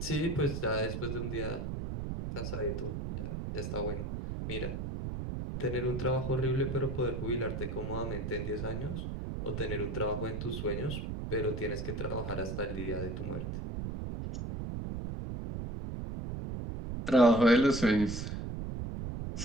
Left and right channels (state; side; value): noise; right; rumble, 4 dB below the sound